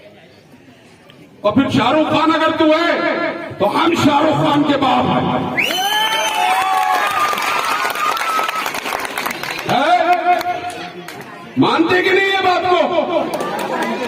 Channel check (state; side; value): identical; both; correlation 1.00